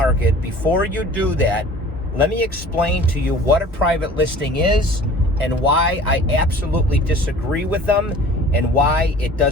before you do that, let me explain to you what a private listing is and why I absolutely disagree with them and why it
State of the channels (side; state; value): both; normal; correlation 0.46